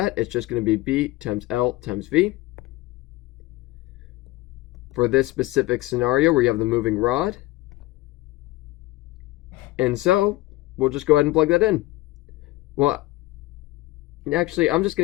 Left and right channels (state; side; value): quieter; right; 18.9 dB